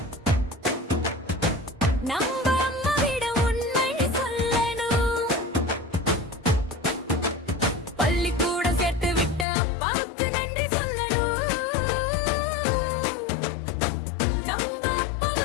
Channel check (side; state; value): right; drops out; at 9.5 s